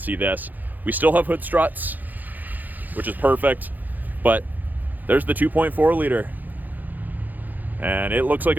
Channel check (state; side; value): late; left; 0.084 ms